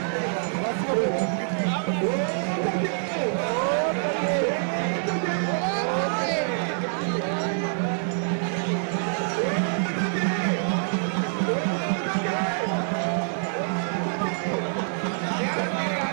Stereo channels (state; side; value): silent; left; 61 dB below the other